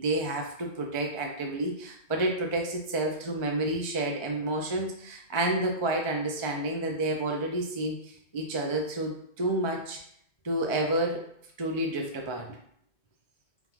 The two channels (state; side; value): late; right; 1.4 ms